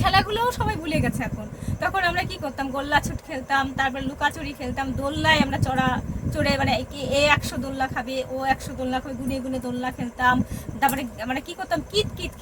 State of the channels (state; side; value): identical; both; correlation 1.00